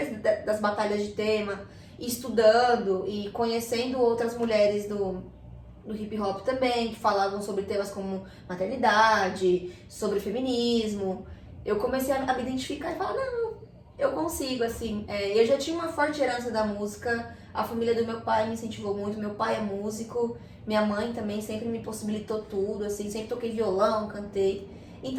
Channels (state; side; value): identical; both; correlation 1.00